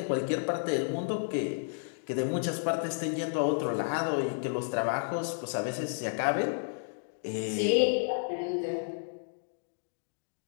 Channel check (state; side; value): silent; right; digital silence